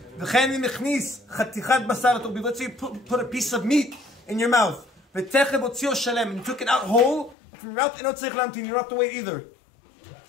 Let's say you put a piece of meat in your mouth, and you took it out whole from your mouth, you don't have to wait either.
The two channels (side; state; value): right; drops out; at 7.4 s